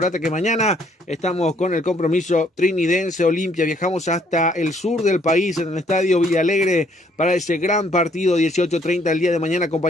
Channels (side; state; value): both; normal; correlation 0.65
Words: que mañana estamos con el compromiso trinidense Olimpia. Viajamos hasta el sur del país en el estadio Villalegre para ese gran partido 18:30 el día de mañana.